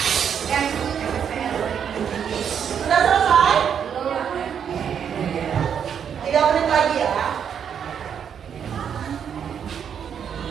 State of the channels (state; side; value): quieter; left; 8.0 dB